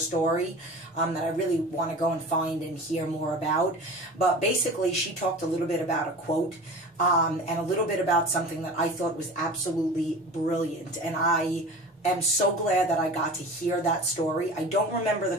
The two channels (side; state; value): both; normal; correlation 0.37